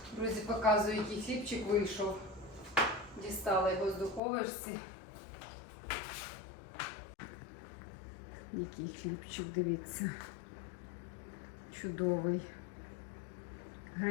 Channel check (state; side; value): drops out; right; at 4.2 s